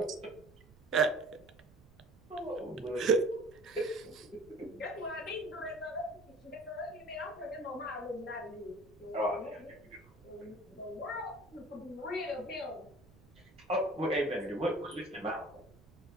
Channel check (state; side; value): noise; right; rumble, 24 dB below the sound